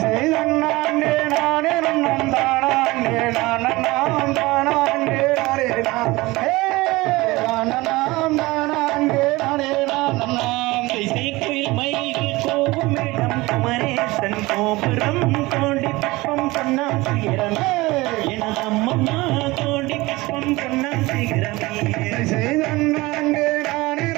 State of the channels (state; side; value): quieter; left; 21.2 dB